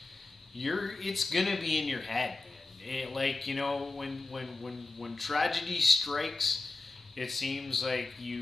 it's gonna be in your head, man. Like, when tragedy strikes, it seems like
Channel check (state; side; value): quieter; right; 3.3 dB